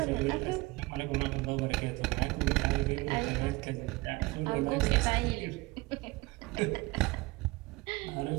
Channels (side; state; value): left; quieter; 22.6 dB